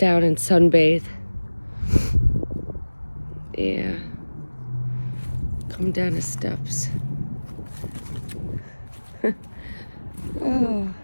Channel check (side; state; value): both; inverted; correlation -1.00